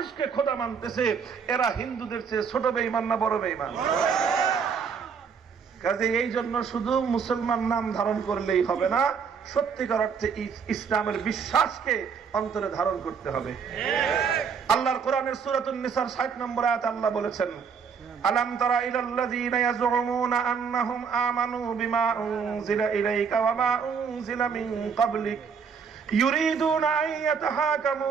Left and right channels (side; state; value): left; quieter; 6.3 dB